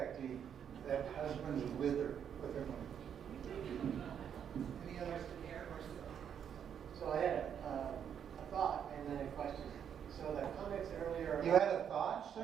that husbands wither with their money. Any others? So I had a thought and then a question. So the comments earlier. You had a thought,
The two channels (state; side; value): quieter; left; 8.4 dB